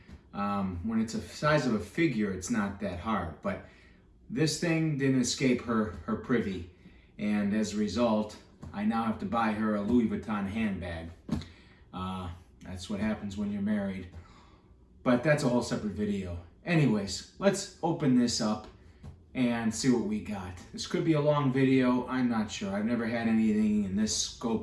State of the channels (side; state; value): both; identical; correlation 1.00